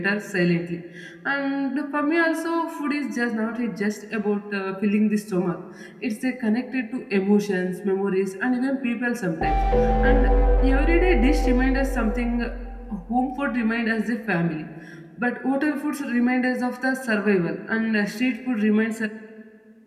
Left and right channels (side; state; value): both; identical; correlation 1.00